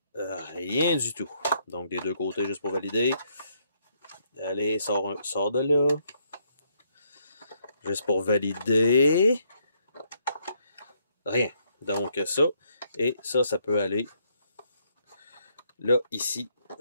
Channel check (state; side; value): inverted; both; correlation -0.72